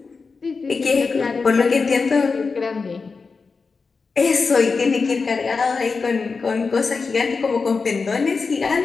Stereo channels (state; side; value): quieter; right; 4.6 dB